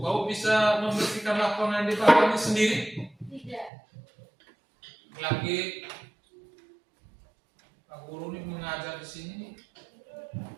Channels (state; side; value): drops out; left; at 3.7 s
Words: kau bisa membersihkan lapangan di bawah ini sendiri? Tidak. Lagi Pak Guru ini mengajar di sini,